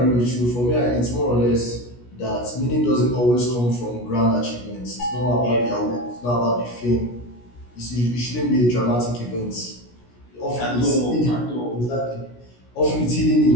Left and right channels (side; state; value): right; late; 17 ms